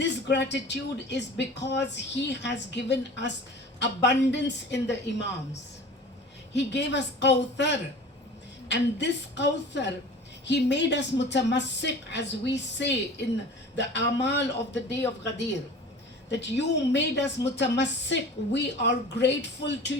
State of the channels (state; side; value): normal; both; correlation 0.40